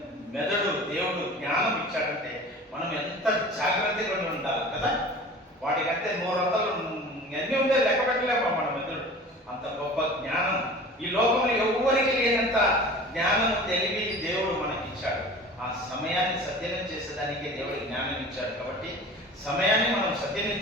మెదడు దేవుడు జ్ఞానం ఇచ్చాడంటే మనం ఎంత జాగ్రత్తగా ఉండాలి కదా. వాటికంటే 100 అన్నీ ఉంటే లెక్క పెట్టలేమా మన మెదడు. అంత గొప్ప జ్ఞానం ఈ లోకంలో ఎవరికి లేనంత జ్ఞానం, తెలివి దేవుడు మనకి ఇచ్చాడు. ఆ సమయాన్ని సద్వినియోగం చేసేదానికి దేవుడు జ్ఞానం ఇచ్చాడు. కాబట్టి సమయాన్ని మనం సద్వినియోగం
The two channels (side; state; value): both; normal; correlation 0.40